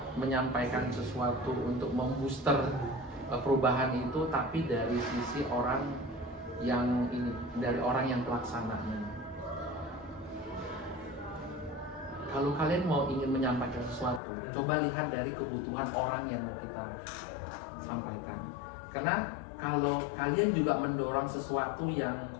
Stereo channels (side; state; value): right; drops out; at 14.2 s